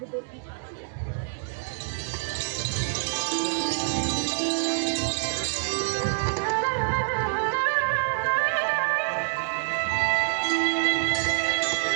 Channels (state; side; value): silent; left; digital silence